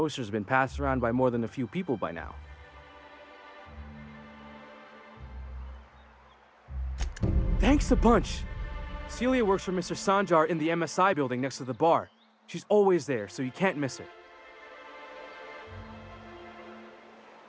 been passed around by more than a few people by now. Thanks a bunch! Celia works for Mr. Sanjar in the MSI building next to the bar. She's always there, so you can't miss her.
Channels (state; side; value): identical; both; correlation 1.00